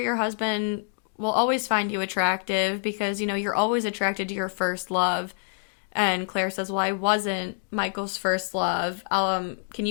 husband will always find you attractive because, you know, you're always attracted to your first love. And Claire says, well, I wasn't Michael's first love. Can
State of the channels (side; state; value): right; silent; 60 dB below the other